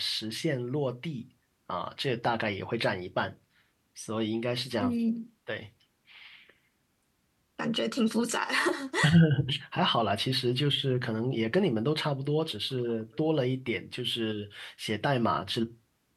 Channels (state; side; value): identical; both; correlation 1.00